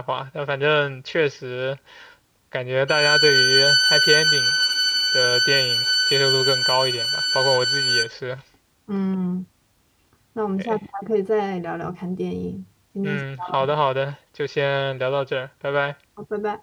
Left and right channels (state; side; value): identical; both; correlation 1.00